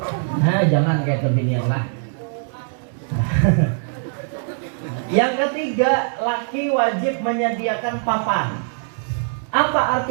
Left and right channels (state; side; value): silent; left; digital silence